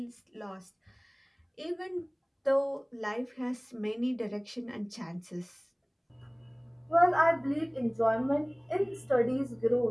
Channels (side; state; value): both; identical; correlation 1.00